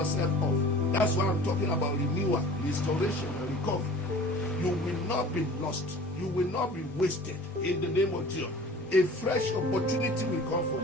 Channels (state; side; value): normal; both; correlation 0.44